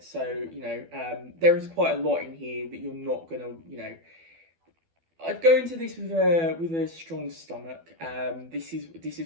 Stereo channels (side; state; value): left; late; 12 ms